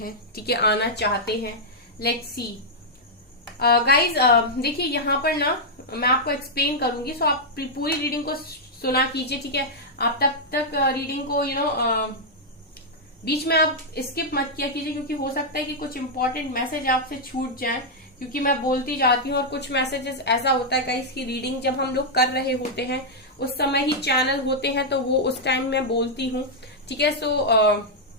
ठीक है, आना चाहते हैं। लेट्स सी गाइज, देखिए यहाँ पर ना मैं आपको एक्सप्लेन करूंगी, सो आप पूरी रीडिंग को सुना कीजिए। ठीक है, आप तक रीडिंग को बीच में आप स्किप मत किया कीजिए, क्योंकि हो सकता है कि कुछ इंपॉर्टेंट मैसेज आपसे छूट जाए, क्योंकि मैं बोलती जाती हूँ और कुछ मैसेजेस ऐसा होता है गाइस की रीडिंग जब हम लोग कर रहे होते हैं उस समय ही चैनल होते हैं, तो वो उस टाइम मैं बोलती हूँ। ठीक है, सो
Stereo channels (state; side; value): normal; both; correlation -0.05